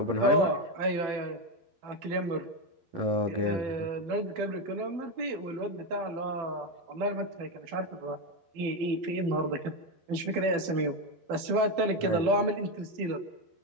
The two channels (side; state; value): left; late; 12 ms